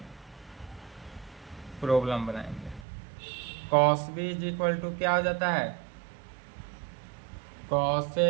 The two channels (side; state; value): left; drops out; at 2.8 s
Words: प्रॉब्लम बनाएंगे। Cos B is equal to क्या हो जाता है, cos A